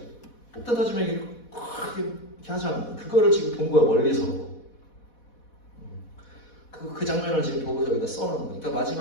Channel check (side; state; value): right; late; 4.1 ms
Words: 폭탄 터지면 이렇게 하잖아. 그거를 지금 본 거야 멀리서. 그 장면을 지금 보고 여기다 써놓은 거야.